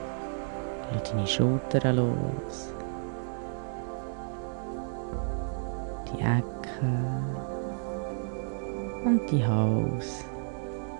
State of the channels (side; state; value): left; silent; digital silence